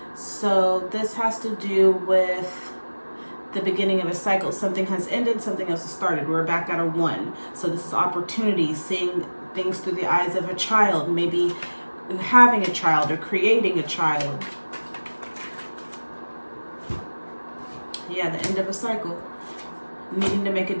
So this has to do with the beginning of a cycle. Something has ended, something else has started. We're back at a 1. So this is opportunity, seeing things through the eyes of a child, maybe having a child or creating a child. Yeah, the end of a cycle. Needing to make a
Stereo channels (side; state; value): both; inverted; correlation -1.00